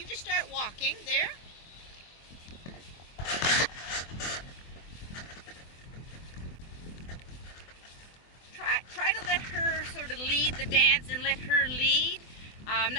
just start walking there. Try to let her sort of lead the dance and let her lead.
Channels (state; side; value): late; right; 24 ms